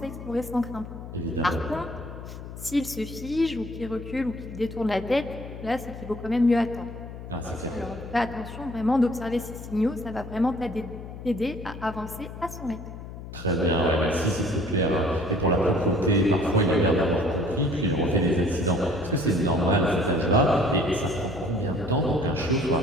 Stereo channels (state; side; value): noise; left; hum, 11 dB below the sound